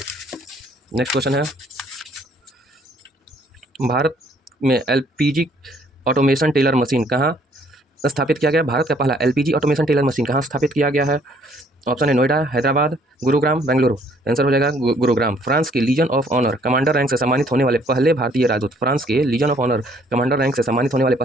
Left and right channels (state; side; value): normal; both; correlation 0.63